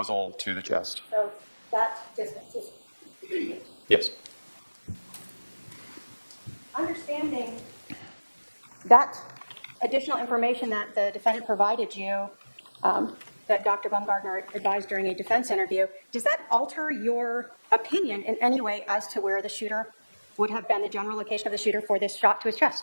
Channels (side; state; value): both; inverted; correlation -1.00